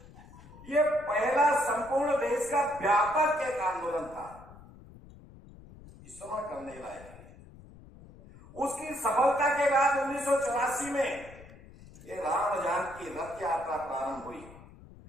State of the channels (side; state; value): left; noise; rumble, 20 dB below the sound